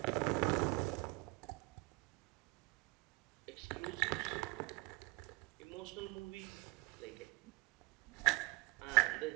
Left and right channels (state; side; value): quieter; left; 24.6 dB